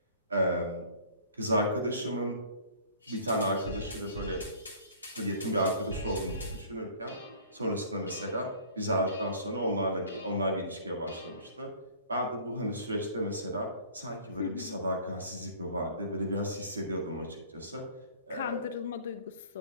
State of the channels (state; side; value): inverted; both; correlation -0.49